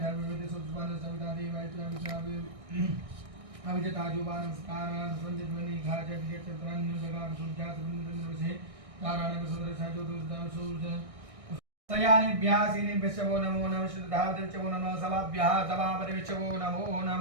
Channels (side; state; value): left; late; 1.6 ms